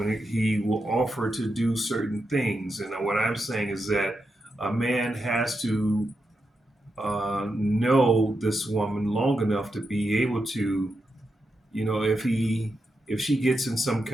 he will offer to do certain things, and what I'm saying is that a man has to know this woman long enough to be able to, if she gets in some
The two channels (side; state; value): both; normal; correlation 0.86